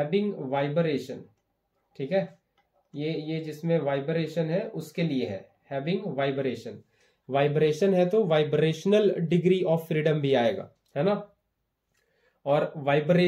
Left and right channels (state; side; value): identical; both; correlation 1.00